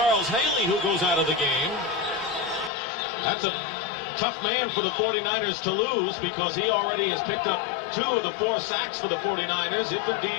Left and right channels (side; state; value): right; drops out; at 2.7 s